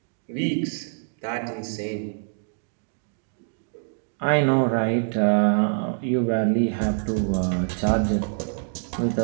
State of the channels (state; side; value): silent; left; digital silence